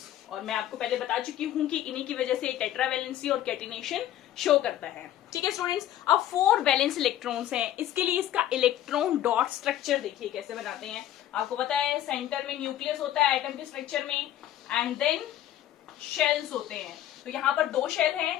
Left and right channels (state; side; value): quieter; right; 12.4 dB